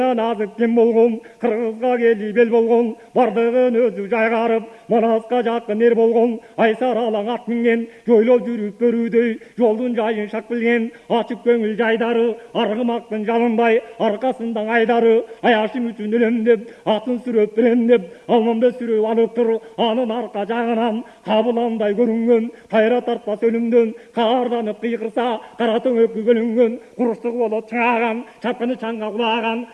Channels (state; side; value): identical; both; correlation 1.00